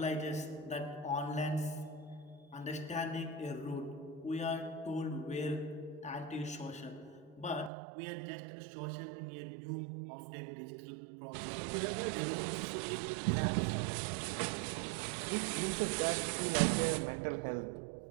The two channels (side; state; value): left; drops out; at 7.7 s